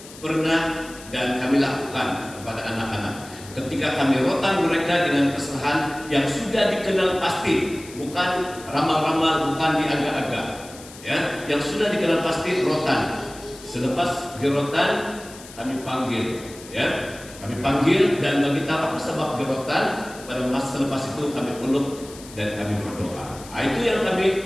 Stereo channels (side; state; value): left; noise; hiss, 18 dB below the sound